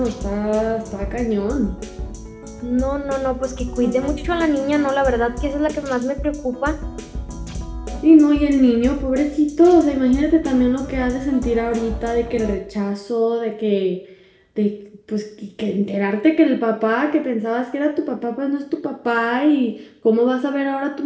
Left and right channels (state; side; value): identical; both; correlation 1.00